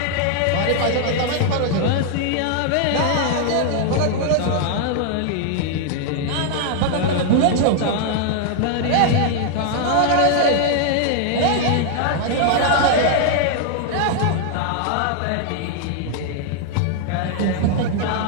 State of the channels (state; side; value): different; both; correlation 0.00